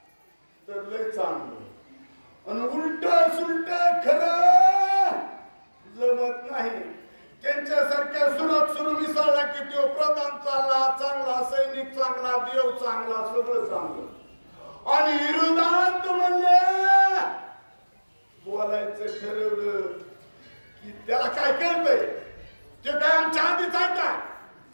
तर लय चांगलं, आणि उलट सुलट खरं जमत नाही. त्यांच्यासारख्या सुरत सुरू मिसळला की तो प्रधान चांगला, चांगला सैनिक चांगला, देव चांगला, सगळं चांगलं. आणि विरोधात म्हणले बोलायचं ठरवलं की त्याला काय कळतंय, ते काय आमच्या आधीच आहे का,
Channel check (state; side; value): inverted; both; correlation -1.00